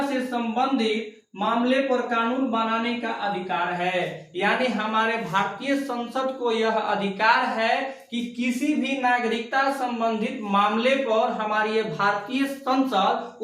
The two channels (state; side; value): identical; both; correlation 1.00